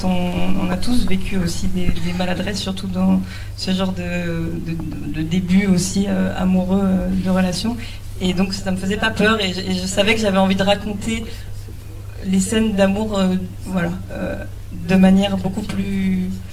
on a tous vécu aussi des maladresses, surtout dans ce genre de début aussi amoureux de relation. Et donc, ça me faisait pas peur et je savais que j'avais envie de raconter les scènes d'amour, de manière beaucoup plus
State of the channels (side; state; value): both; identical; correlation 1.00